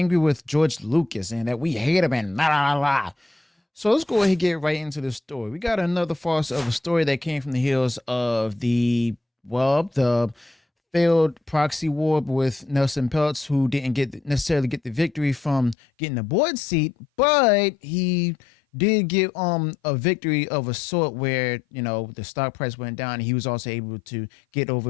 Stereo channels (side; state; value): right; drops out; at 15.8 s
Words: with George Lucas and that we hate him and la la la. So let's go ahead and get right into the story. We got another farce of a story that came from the heels of the failed proxy war with Nelson Peltz, who didn't necessarily get the victory from getting the board seat, but he did get a victory of a sort where, you know, the stock price went down and he was also able to get